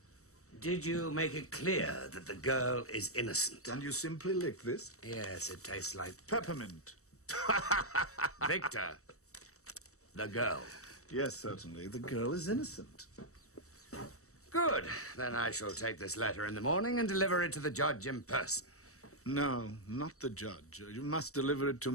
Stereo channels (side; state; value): right; late; 0.64 ms